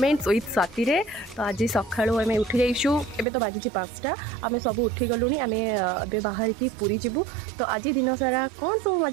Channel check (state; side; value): drops out; left; at 3.2 s